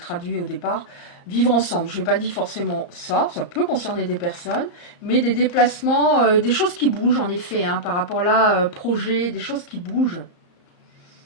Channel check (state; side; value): late; right; 34 ms